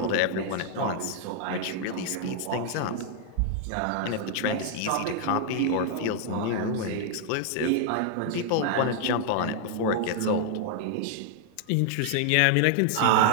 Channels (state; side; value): different; both; correlation -0.01